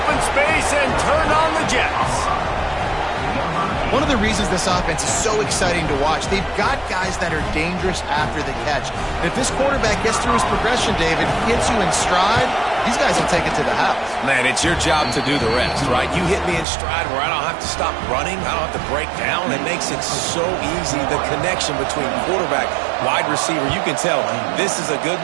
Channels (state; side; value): drops out; left; at 16.7 s